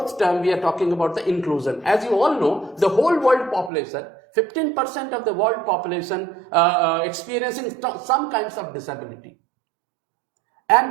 term, we are talking about the inclusion. As you all know, the whole world population, 15% of the world population experiencing some kinds of disability.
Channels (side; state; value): left; drops out; at 3.7 s